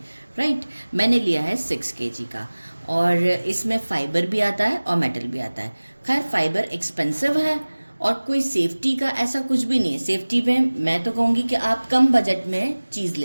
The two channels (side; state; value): both; inverted; correlation -1.00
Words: राइट, मैंने लिया है 6 kg का, और इसमें फाइबर भी आता है और मेटल भी आता है। खैर फाइबर एक्सपेंसिव है और कोई सेफ्टी का ऐसा कुछ भी नहीं है। सेफ्टी में मैं तो कहूँगी कि आप कम बजट में चीज़